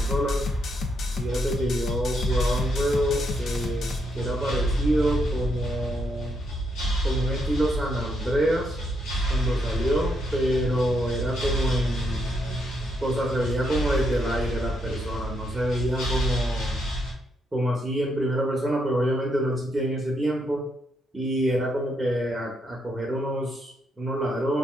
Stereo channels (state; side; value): normal; both; correlation 0.78